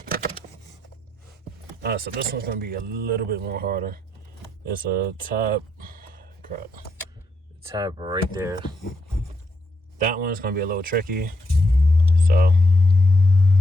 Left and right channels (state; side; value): normal; both; correlation 0.78